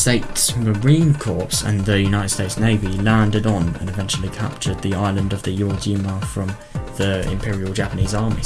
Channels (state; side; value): identical; both; correlation 1.00